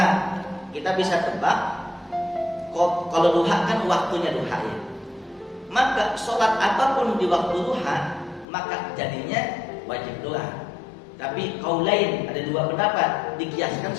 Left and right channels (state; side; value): drops out; right; at 8.5 s